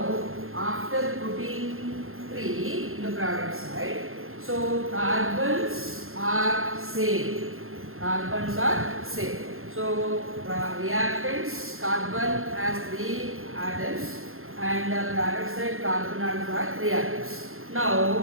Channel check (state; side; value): late; left; 0.61 ms